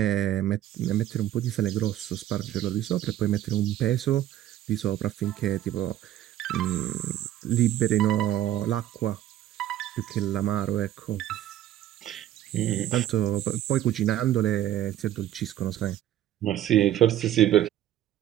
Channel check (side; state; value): left; quieter; 12.7 dB